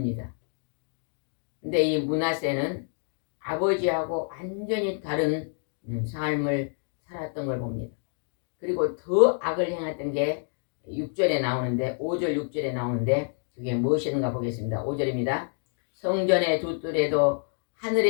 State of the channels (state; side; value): silent; right; 58 dB below the other